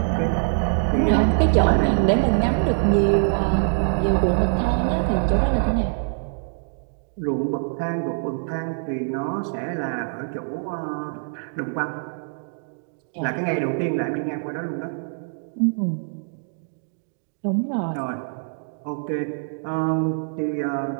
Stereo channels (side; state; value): left; silent; digital silence